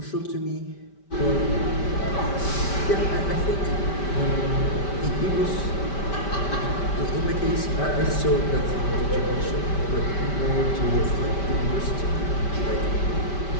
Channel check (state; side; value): late; right; 5.1 ms